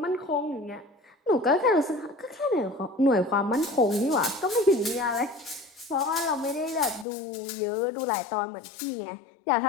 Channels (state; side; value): drops out; right; at 7.1 s